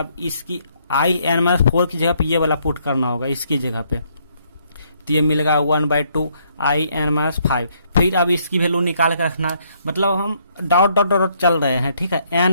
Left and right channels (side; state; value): both; inverted; correlation -0.70